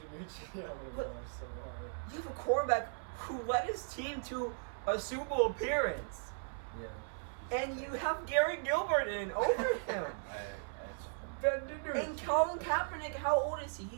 I'm gonna But- go so hard. You have a quarterback who led his team to a Super Bowl appearance, Yeah. and you have Garrett Gilbert in over him. Ben Danucci. And Colin Kaepernick, how old is he?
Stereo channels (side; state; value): left; silent; 53 dB below the other